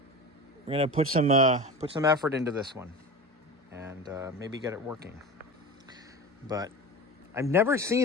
We're going to put some effort into this one and maybe get it working. But I've never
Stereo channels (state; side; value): normal; both; correlation 0.31